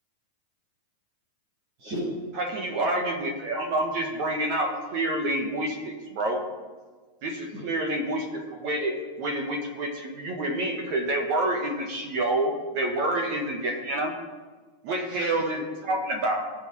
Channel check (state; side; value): late; left; 9.4 ms